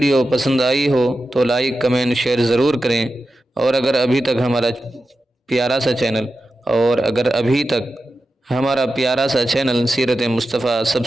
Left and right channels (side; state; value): both; normal; correlation 0.91